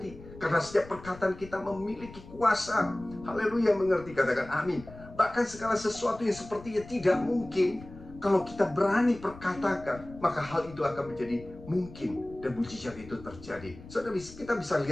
Karena setiap perkataan kita memiliki kuasa. Haleluya, mengerti, katakan amin. Bahkan segala sesuatu yang sepertinya tidak mungkin, kalau kita berani perkatakan, maka hal itu akan menjadi mungkin. Dan mujizat itu terjadi. Saudara, kita bisa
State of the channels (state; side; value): noise; left; rumble, 17 dB below the sound